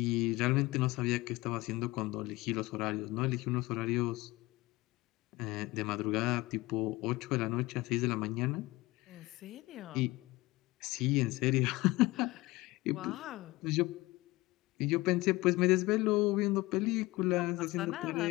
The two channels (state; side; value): quieter; right; 20.5 dB